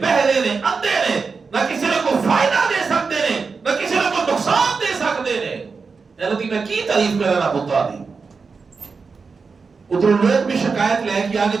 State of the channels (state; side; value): quieter; left; 4.9 dB